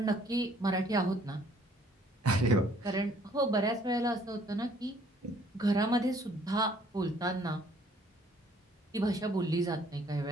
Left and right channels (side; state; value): both; normal; correlation 0.60